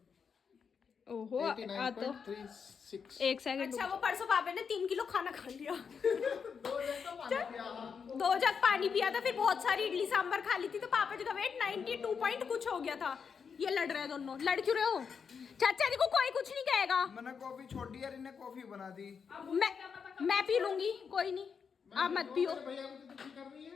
ओहो आ तो 89.36। 1 सेकंड। अच्छा वो परसों पापा ने 3 किलो खाना खा लिया। 2 जग पानी पिया था, फिर बहुत सारी इडली सांभर खा ली थी। तो पापा जी का वेट 92 पॉइंट कुछ हो गया था। ये लड़ रहे हैं दोनों। लड़ क्यों रहे हो? चाचा जी को कोई कुछ नहीं कहेगा। मैंने कॉफी छोड़ दी यार, इन्हें कॉफी बना दी। मैं पी लूंगी, कोई नहीं, आप मत पियो। भैया को तो दुखी कर रही है।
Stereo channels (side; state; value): right; quieter; 6.3 dB